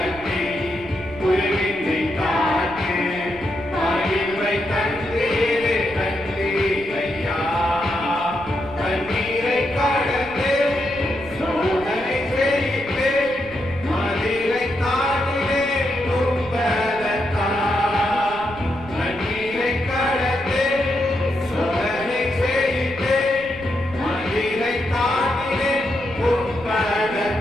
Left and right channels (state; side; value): noise; right; rumble, 17 dB below the sound